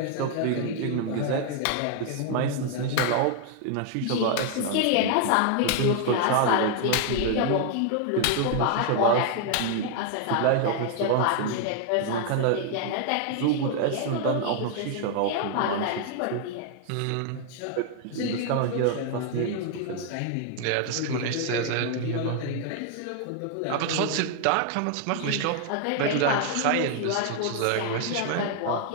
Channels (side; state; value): both; different; correlation 0.00